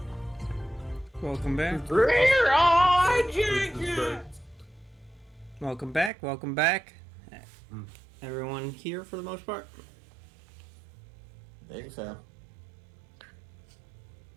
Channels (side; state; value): left; drops out; at 6.1 s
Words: Welcome back. Welcome back. Welcome back. Everyone here for the most part. I think so.